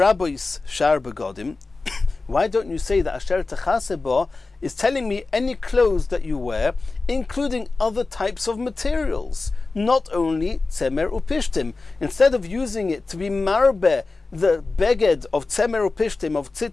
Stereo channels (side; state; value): right; quieter; 3.7 dB